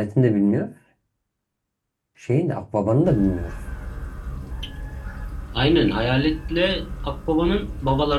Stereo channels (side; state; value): both; identical; correlation 1.00